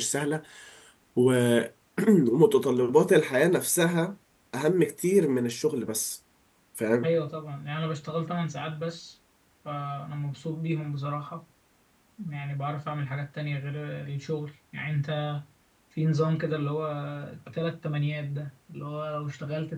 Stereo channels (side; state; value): both; identical; correlation 1.00